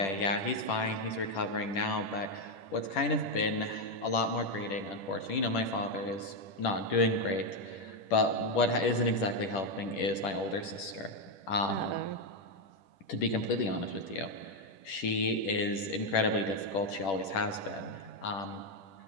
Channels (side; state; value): right; late; 10 ms